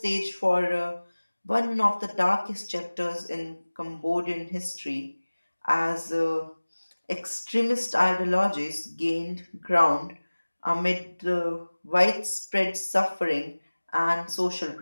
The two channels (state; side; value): inverted; both; correlation -1.00